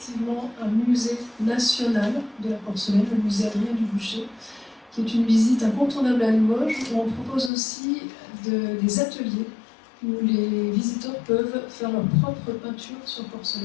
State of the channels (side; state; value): right; drops out; at 7.5 s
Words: un musée national de la porcelaine, le musée Adrien Dubuchet, qui est une visite incontournable à Limoges où on propose aussi des ateliers où les visiteurs peuvent faire leur propre peinture sur